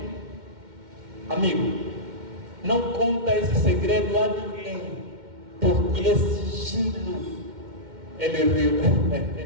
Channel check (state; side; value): late; left; 2.1 ms